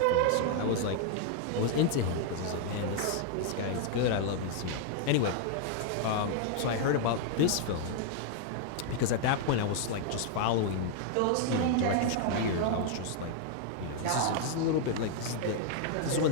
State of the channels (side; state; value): both; different; correlation 0.00